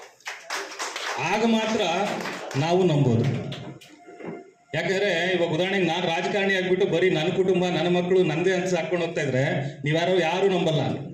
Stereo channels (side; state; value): both; identical; correlation 1.00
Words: ಆಗ ಮಾತ್ರ ನಾವು ನಂಬೋದು. ಯಾಕಂದ್ರೆ ಇವಾಗ ಉದಾಹರಣೆಗೆ ನಾನು ರಾಜಕಾರಣಿ ಆಗ್ಬಿಟ್ಟು ಬರೀ ನನ್ನ ಕುಟುಂಬ, ನನ್ನ ಮಕ್ಕಳು, ನಂದೇ ಅಂತ ಹಾಕೊಂಡು ಹೋಗ್ತಾ ಇದ್ರೆ ಯಾರು ನಂಬಲ್ಲ.